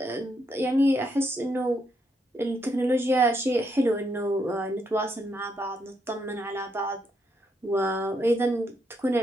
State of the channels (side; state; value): both; normal; correlation 0.77